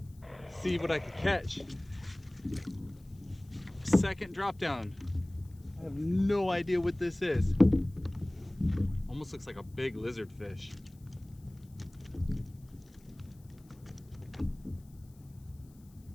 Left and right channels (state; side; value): noise; left; hiss, 30 dB below the sound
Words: See what I could catch. Second drop down. I have no idea what this is. Almost looks like a big lizard fish.